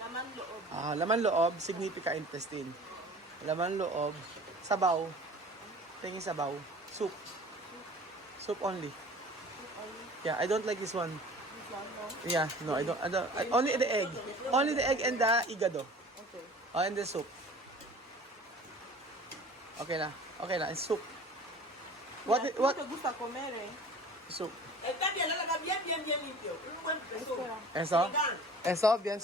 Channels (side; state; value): both; normal; correlation 0.44